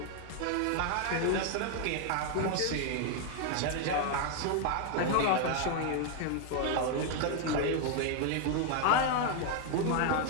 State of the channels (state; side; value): different; both; correlation 0.01